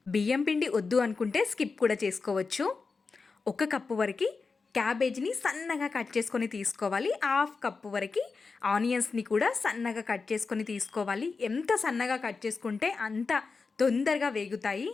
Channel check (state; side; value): quieter; right; 4.5 dB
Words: బియ్యం పిండి వద్దు అనుకుంటే స్కిప్ కూడా చేసుకోవచ్చు. 1 కప్పు వరకు క్యాబేజ్ని సన్నగా కట్ చేసుకొని తీసుకోవాలి. 1/2 కప్పు వరకు ఆనియన్స్ని కూడా సన్నగా కట్ చేసుకొని తీసుకోవాలి. ఎంత సన్నగా కట్ చేసుకుంటే అంత తొందరగా వేగుతాయి.